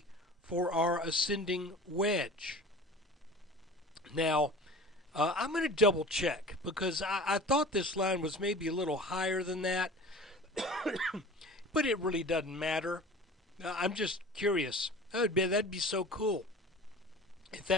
for our ascending wedge. Now, I'm going to double check because I thought this line was maybe a little higher than that, but it really doesn't matter. I'm just curious. That'd be so cool if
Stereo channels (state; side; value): normal; both; correlation 0.40